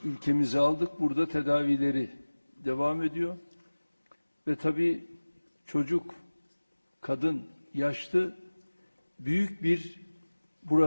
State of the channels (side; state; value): both; inverted; correlation -1.00